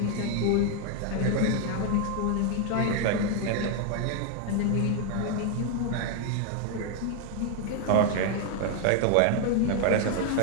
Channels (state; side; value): different; both; correlation 0.00